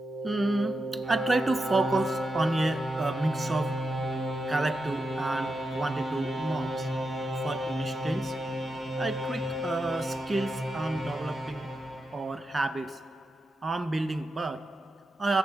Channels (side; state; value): both; normal; correlation 0.87